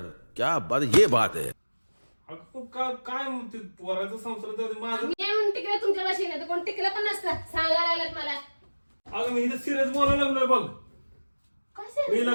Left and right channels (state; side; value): inverted; both; correlation -1.00